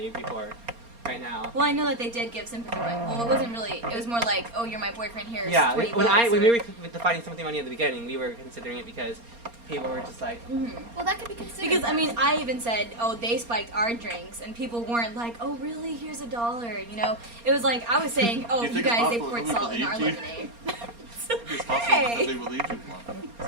before, right now. Well, I know that they did give sympathy money. Well, it wasn't really. It was more like, oh, you're my boyfriend. Here's Yeah, 20 when bucks, we or- were defining sympathy money at the beginning, we were considering it because people were just like, Mhm. Well, that could be considered. Because I mean, I even said, "Oh, they spiked our drinks," and people weren't like, "Oh, really? Here's $1." You know, it was like I was saying, "Oh, Do you you think it's guys, they possible poured that salt in our believed you? lemonade." It's possible Hey. that they believed you, Juan. Is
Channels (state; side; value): late; left; 4.3 ms